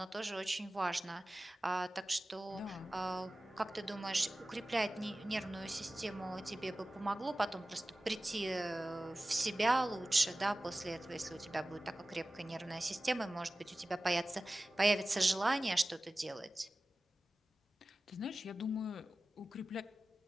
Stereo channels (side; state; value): both; normal; correlation 0.96